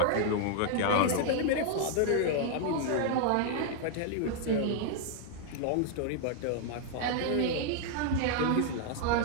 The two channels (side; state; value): both; different; correlation -0.01